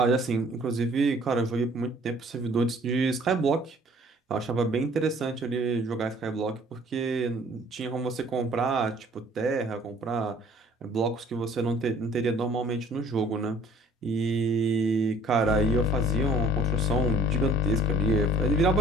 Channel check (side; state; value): both; normal; correlation 0.54